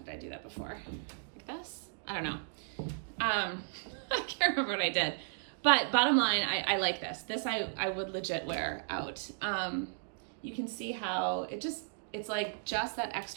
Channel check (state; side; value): silent; left; digital silence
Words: I do that before? Like this? I don't know. I can't remember what I did. But bottom line, I like this. This I would legit wear out. You can see how it's like just that